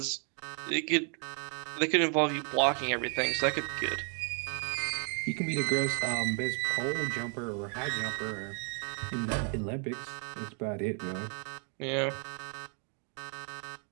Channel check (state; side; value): quieter; left; 39.7 dB